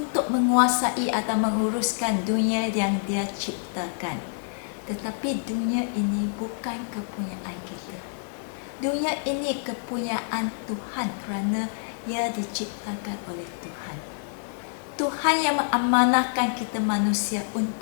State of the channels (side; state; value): right; silent; digital silence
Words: menguasai atau menguruskan dunia yang Dia ciptakan. Tetapi dunia ini bukan kepunyaan kita. Dunia ini kepunyaan Tuhan kerana ia diciptakan oleh Tuhan. Tuhan yang mengamanahkan kita manusia